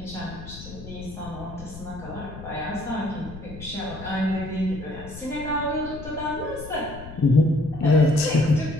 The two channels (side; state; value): left; noise; rumble, 13 dB below the sound